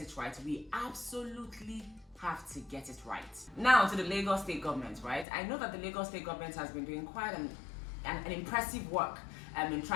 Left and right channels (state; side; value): drops out; right; at 5.2 s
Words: it right, we absolutely have to get it right. Now to the Lagos state government, right? I know that the Lagos state government has been doing quite an impressive work in